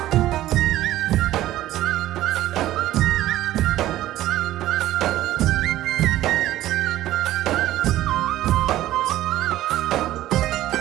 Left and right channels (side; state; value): left; quieter; 14.5 dB